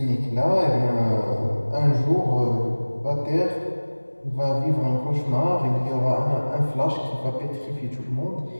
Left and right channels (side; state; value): both; inverted; correlation -1.00